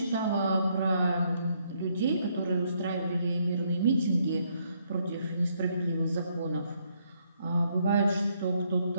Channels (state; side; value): inverted; both; correlation -0.72